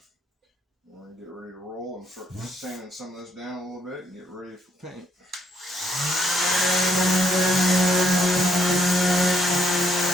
We're going to get ready to roll and start sanding some of this down a little bit and get ready for paint.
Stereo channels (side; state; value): both; normal; correlation 0.71